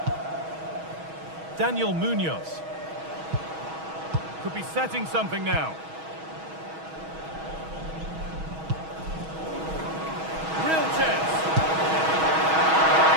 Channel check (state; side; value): late; left; 6.3 ms